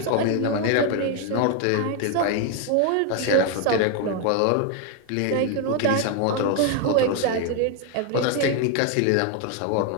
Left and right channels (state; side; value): different; both; correlation 0.01